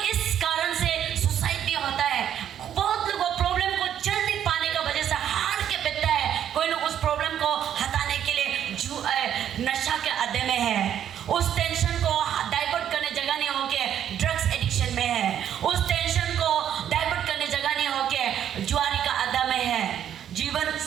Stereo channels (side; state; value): left; quieter; 9.9 dB